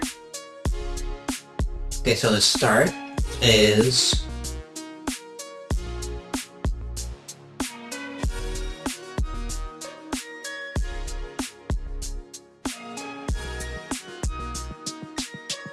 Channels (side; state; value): both; identical; correlation 1.00